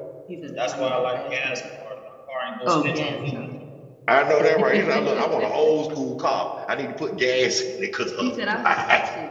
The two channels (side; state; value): both; identical; correlation 1.00